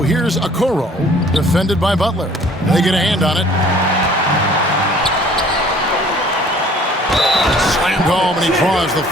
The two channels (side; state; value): both; normal; correlation 0.54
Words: here's Okoro, defended by Butler. They get a hand on it. Slammed home, and he draws the